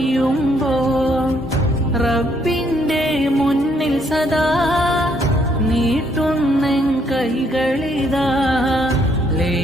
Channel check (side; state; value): both; normal; correlation 0.70